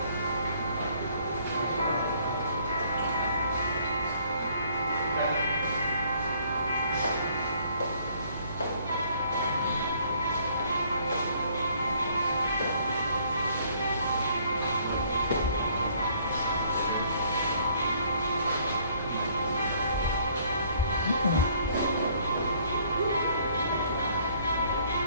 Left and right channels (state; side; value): inverted; both; correlation -0.62